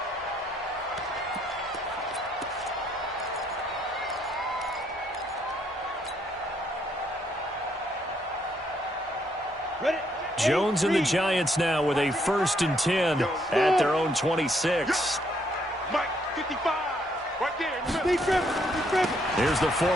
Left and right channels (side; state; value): both; normal; correlation 0.71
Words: Jones and the Giants now with a 1st and 10 at their own 26. Mike, 55. Right there. Here's the